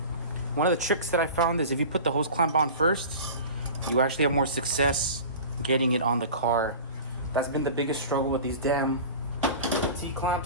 One of the tricks that I found is if you put the hose clamp on first, you actually have more success getting it on the car. That's been the biggest struggle with these damn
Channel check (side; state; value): both; inverted; correlation -0.36